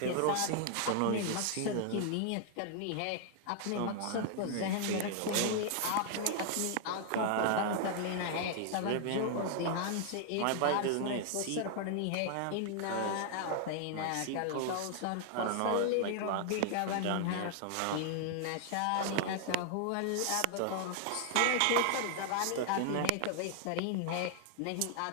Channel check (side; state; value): both; different; correlation 0.00